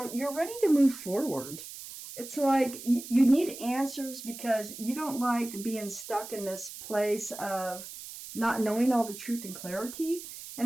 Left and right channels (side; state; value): right; noise; hiss, 12 dB below the sound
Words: you're ready to move forward. It's like you need answers because you don't like being stuck in this place of not knowing all the truth and clarity.